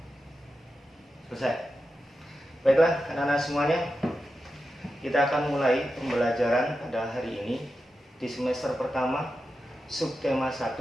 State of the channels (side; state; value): both; normal; correlation 0.90